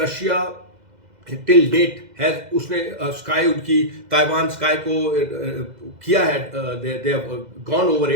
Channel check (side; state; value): left; late; 2.0 ms